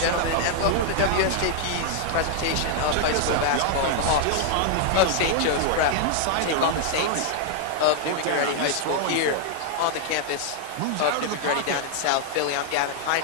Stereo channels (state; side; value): different; both; correlation -0.01